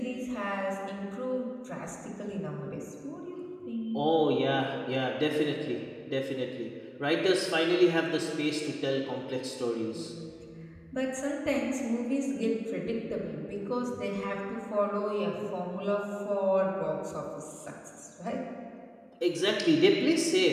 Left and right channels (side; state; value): both; identical; correlation 1.00